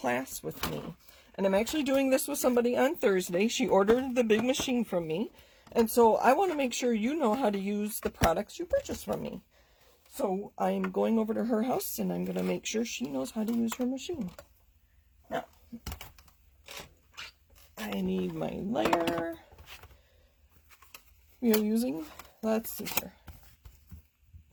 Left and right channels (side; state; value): both; identical; correlation 1.00